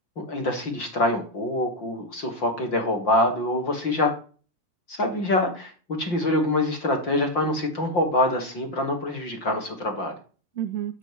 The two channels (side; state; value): right; late; 5.7 ms